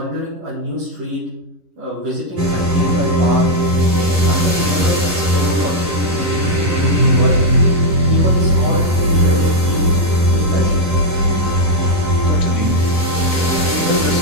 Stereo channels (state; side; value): late; left; 11 ms